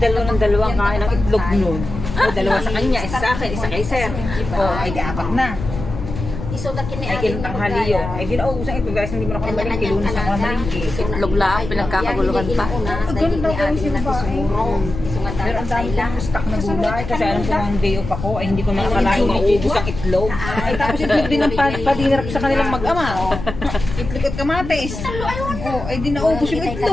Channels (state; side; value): noise; left; rumble, 8 dB below the sound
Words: kain ng itlog noon. Dalawa sa kanya, isa sa akin, isa kay Sir. Ay di apat na. Ay kintanghali yun. Ay ginauusan ito guys, hindi mo na ako malingki. Lunes ako na malingki. Itlog lang, pinagkakaguluhan pa. Ganun daw gawin si babae. Pero ang dami kong stock na gulay. Kasi alam ko ng day off ako, ay hindi ko nakakalain maubos ang itlog. Ay tapos itlog din ang padinarap sa kanilang mag-ama. Itlog at kamatis. Ay di naubos yung